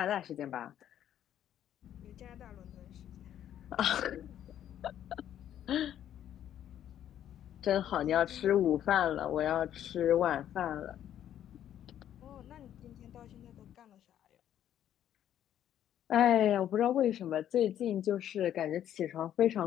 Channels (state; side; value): quieter; right; 10.8 dB